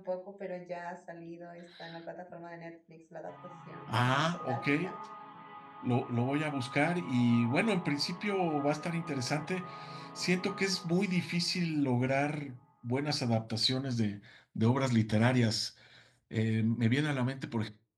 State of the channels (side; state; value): both; identical; correlation 1.00